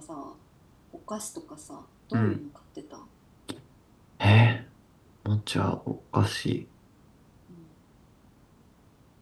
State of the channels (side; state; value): both; identical; correlation 1.00